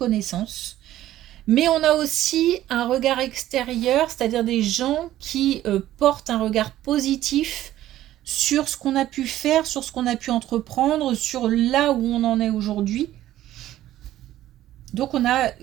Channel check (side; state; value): left; quieter; 13.7 dB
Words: Mais on a aussi un regard extérieur, c'est-à-dire des gens qui portent un regard positif sur ce qu'on a pu faire, sur ce qu'on a pu entreprendre, sur là où on en est aujourd'hui. Donc on a